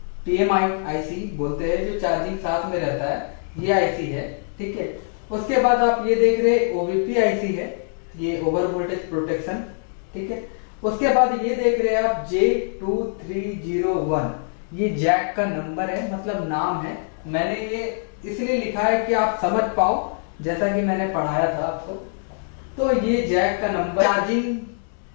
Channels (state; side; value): silent; right; digital silence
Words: पीएमआई आईसी बोलते हैं, जो चार्जिंग साथ में रहता है, ये आईसी है। ठीक है, उसके बाद आप ये देख रहे ओवीपी आईसी है, ये ओवर वोल्टेज प्रोटेक्शन। ठीक है, उसके बाद ये देख रहे हैं आप J2301, ये जैक का नंबर है, मतलब नाम है। मैंने ये इसलिए लिखा है कि आप समझ पाओ, जैसा कि मैंने पढ़ाया था आपको। तो ये जैक का नंबर, चार्जिंग